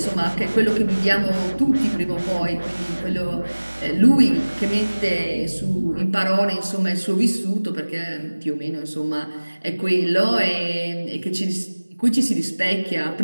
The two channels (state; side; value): inverted; both; correlation -1.00